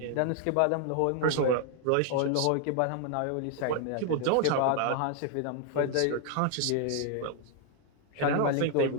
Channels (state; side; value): different; both; correlation 0.00